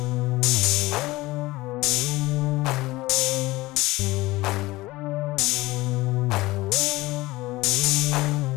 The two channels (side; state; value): right; quieter; 19.6 dB